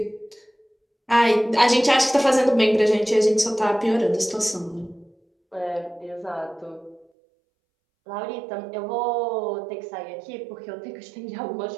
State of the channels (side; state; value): left; drops out; at 7.1 s